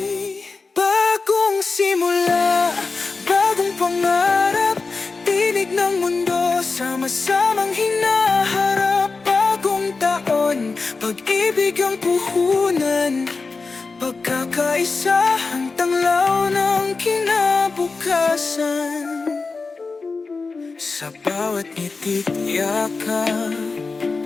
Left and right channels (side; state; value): right; quieter; 4.2 dB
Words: Bagong simula, bagong pangarap, tinig ng mundo, sama-samang hinaharap. Bagong taon, pag-ibig ang puhunan, pagkakaisa ang tanglaw ng kinabukasan. Sa bawat ngitit yakap,